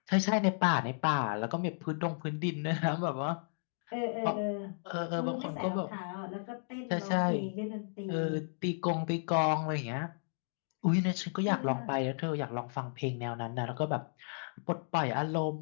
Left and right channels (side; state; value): right; silent; digital silence